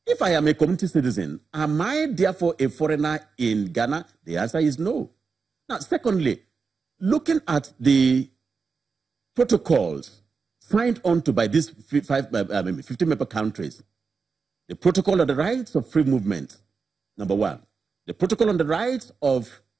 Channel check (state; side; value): quieter; left; 5.0 dB